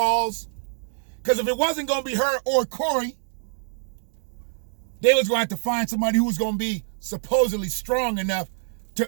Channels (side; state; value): left; silent; digital silence